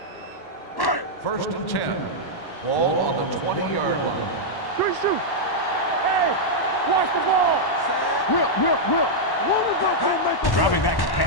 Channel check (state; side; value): late; right; 1.1 ms